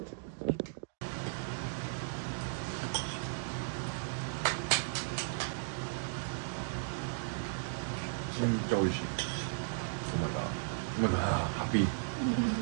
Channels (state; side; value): silent; left; digital silence